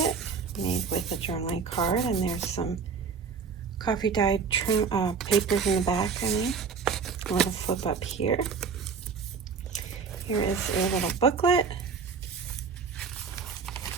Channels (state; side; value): quieter; left; 5.6 dB